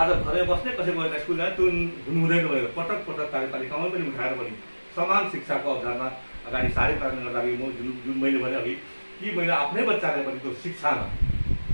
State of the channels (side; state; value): both; inverted; correlation -1.00